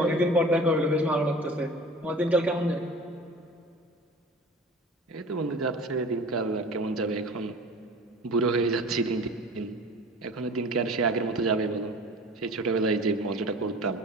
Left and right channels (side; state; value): both; normal; correlation 0.40